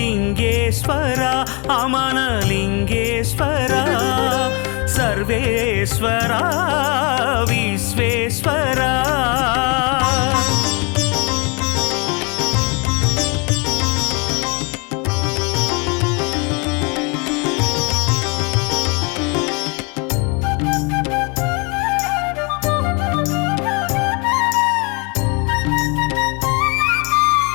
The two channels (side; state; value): right; quieter; 31.5 dB